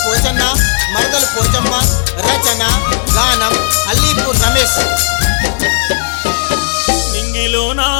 పోచన్న, మరదలు పోచమ్మ. రచన గానం అల్లీపూర్ రమేష్. నింగిలో నా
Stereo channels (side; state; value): right; silent; digital silence